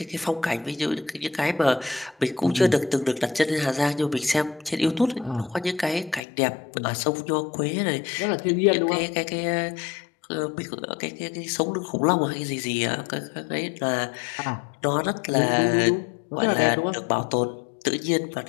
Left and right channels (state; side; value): drops out; right; at 6.2 s